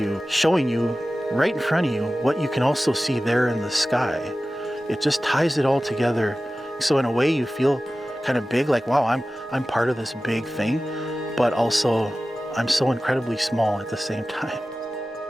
showing you right in front of you what you can also see there in the sky, it just ties it all together. So in a way you feel kind of big, like, wow, I'm part of this big thing, but also I'm so incredibly small at the same time.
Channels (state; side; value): normal; both; correlation 0.95